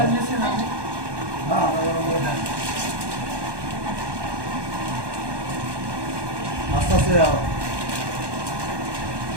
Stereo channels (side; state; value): left; late; 1.2 ms